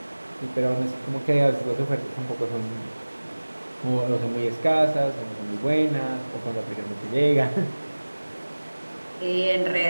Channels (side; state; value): both; inverted; correlation -1.00